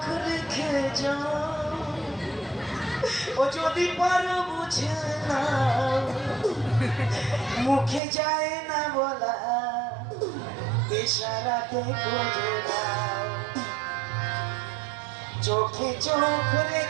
রেখে যাও, ও যদি পারো বুঝে না, মুখে যায় না বলা, ইশারাতে বুঝে দাও। চোখে চোখ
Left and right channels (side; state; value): left; drops out; at 8.0 s